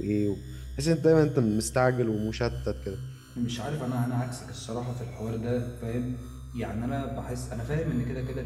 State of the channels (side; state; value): both; identical; correlation 1.00